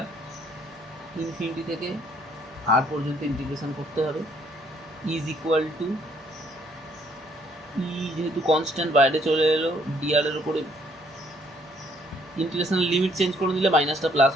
infinity থেকে আর পর্যন্ত ইন্টিগ্রেশন করতে হবে, ইজ ইকুয়াল টু ই যেহেতু কনস্ট্যান্ট বাইরে চলে এলো, ডিআর এর উপরে ইন্টিগ্রেশনের লিমিট চেঞ্জ করে দিলে মাইনাসটা প্লাস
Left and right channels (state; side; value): normal; both; correlation 0.65